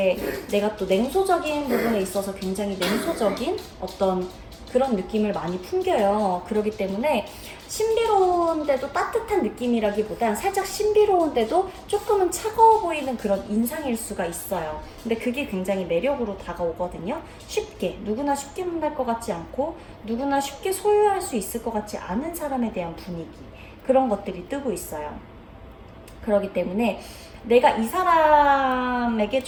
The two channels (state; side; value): identical; both; correlation 1.00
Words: 내가 또 냉소적인 부분에 있어서 굉장히 냉소적인 어떤 그런 느낌을 많이 풍겨요. 그렇기 때문에 신비로운데도 따뜻한 느낌이라기보단 살짝 신비로운데도 조금은 차가워 보이는 그런 인상일 수가 있어요. 근데 그게 굉장히 매력으로 다가오거든요. 쉽게, 누구나 쉽게 만날 것 같지 않고 누구나 쉽게 소유할 수 있을 것 같지 않은 사람에 대한 분위기, 그런 것들이 뜨고 있어요. 그렇기 때문에 내가 이 사람에게